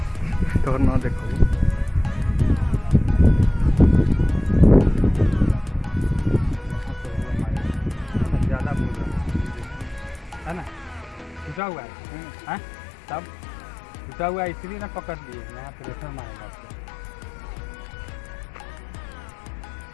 तो ना देखो ज़्यादा मुड़ रहा है ना, टूटा हुआ है, तब टूटा हुआ है इसलिए ना पकड़ लिए, यहाँ पे रेफर मारेगा आपको।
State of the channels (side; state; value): right; drops out; at 11.6 s